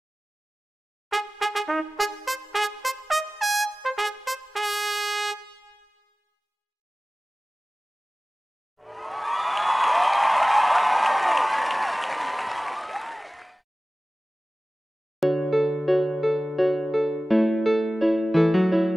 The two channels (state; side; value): normal; both; correlation 0.97